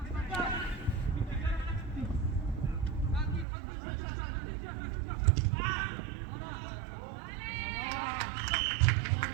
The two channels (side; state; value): left; drops out; at 3.5 s